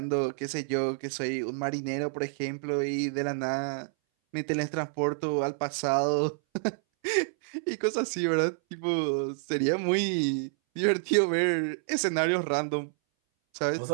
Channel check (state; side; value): silent; left; 59 dB below the other